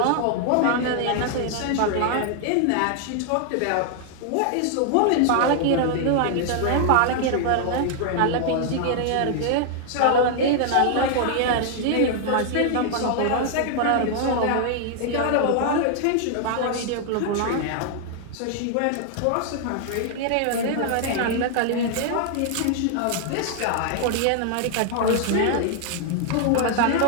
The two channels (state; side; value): different; both; correlation 0.00